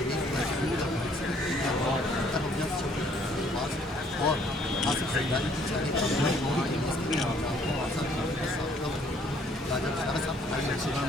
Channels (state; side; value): normal; both; correlation 0.63